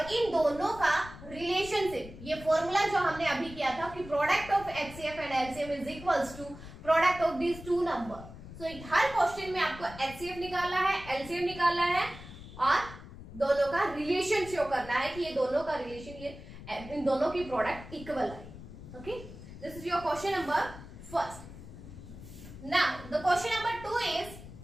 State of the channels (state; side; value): noise; left; rumble, 15 dB below the sound